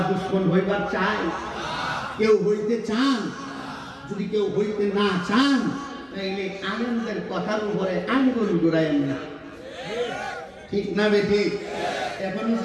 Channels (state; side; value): identical; both; correlation 1.00